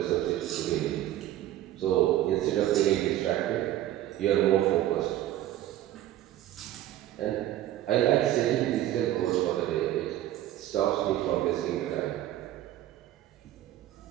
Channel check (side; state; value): left; quieter; 13.4 dB